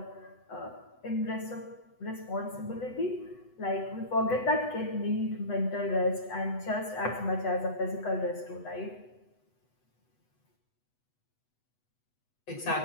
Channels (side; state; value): right; late; 8.1 ms